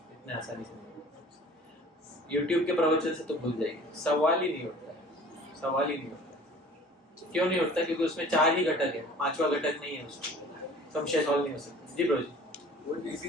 आसानी से नहीं। यूट्यूब के प्रवचन से तो भूल जाएंगे, सवाल ही नहीं होता है, सवाल ही नहीं होता। क्यों नहीं होता? क्योंकि उसमें 4 ही घटक है, 5वां घटक नहीं है उसमें, संशय सॉल्व नहीं हो सकता। जी प्रभु जी। वो इसी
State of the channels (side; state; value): both; normal; correlation 0.47